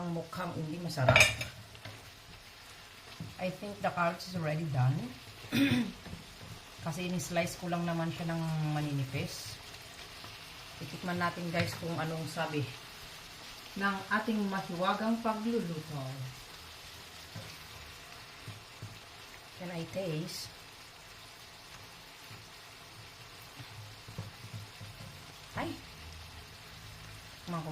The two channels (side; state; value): both; identical; correlation 1.00